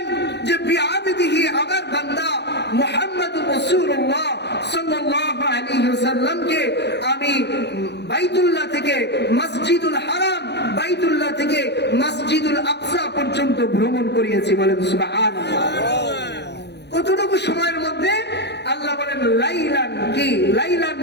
যে বিআবদিহি, আমার বান্দা মুহাম্মদুর রাসূলুল্লাহ সাল্লাল্লাহু আলাইহি ওয়াসাল্লামকে আমি বাইতুল্লাহ থেকে মসজিদুল হারাম, বাইতুল্লাহ থেকে মসজিদুল আকসা পর্যন্ত ভ্রমণ করিয়েছি। বলেন সুবহানাল্লাহ। কতটুকু সময়ের মধ্যে? আল্লাহ বলেন লাইলান। কি লাইলান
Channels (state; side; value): late; right; 0.50 ms